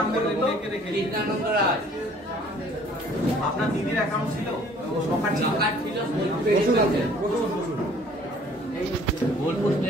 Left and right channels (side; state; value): both; normal; correlation 0.55